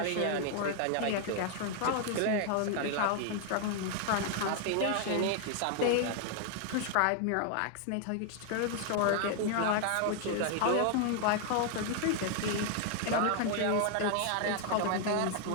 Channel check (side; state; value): both; different; correlation 0.00